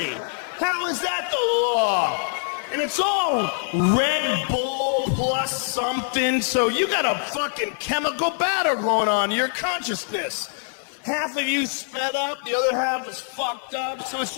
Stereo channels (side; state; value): right; silent; 57 dB below the other